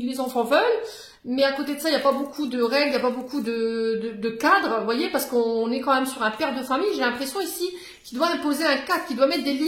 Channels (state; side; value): identical; both; correlation 1.00